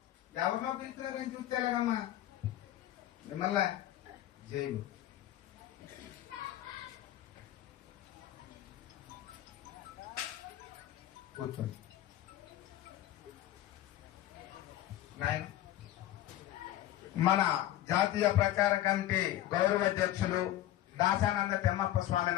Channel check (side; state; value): right; quieter; 13.5 dB